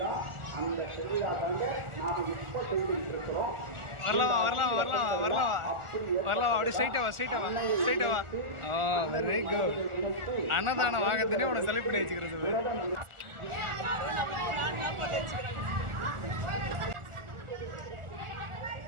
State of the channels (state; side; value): late; left; 1.4 ms